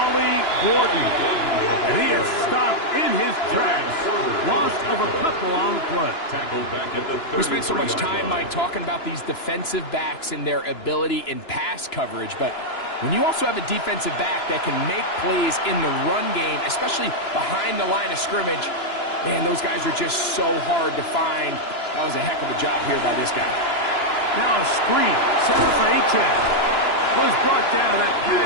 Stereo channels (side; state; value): right; late; 2.9 ms